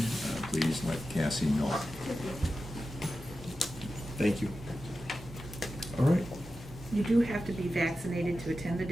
please let Cassie know. Thank you. All right. You do have to be vaccinated to attend the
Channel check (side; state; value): both; normal; correlation 0.92